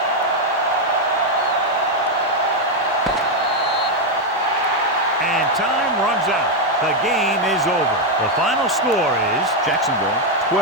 And time runs out. The game is over. The final score is Jacksonville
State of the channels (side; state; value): both; normal; correlation 0.03